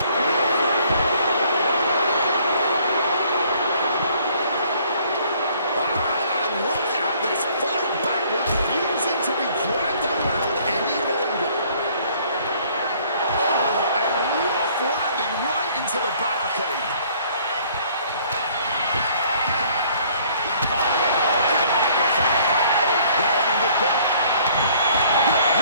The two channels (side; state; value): both; inverted; correlation -0.59